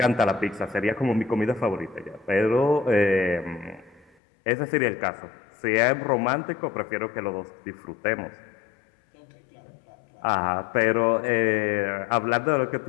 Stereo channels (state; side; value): drops out; right; at 4.1 s